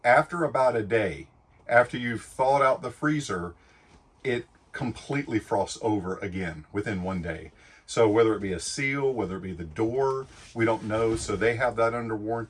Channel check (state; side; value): identical; both; correlation 1.00